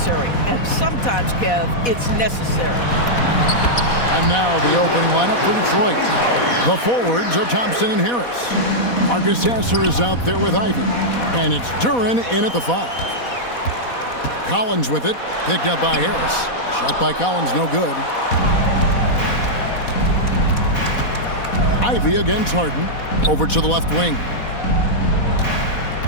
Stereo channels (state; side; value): late; right; 4.1 ms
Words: And sometimes, Kev, it's necessary. And now the opening lineup for Detroit. The forwards are Thompson and Harris. Marcus Sasser is out there with Ivy. And it's Duren in at the 5. Collins with it, picked up by Harris. Shot by Collins, no good. Ivy against Harden. Over to the left wing.